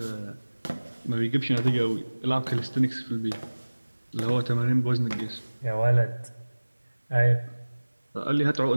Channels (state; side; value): inverted; both; correlation -1.00